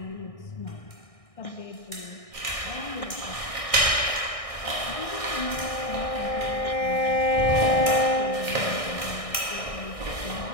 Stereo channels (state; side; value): late; right; 1.6 ms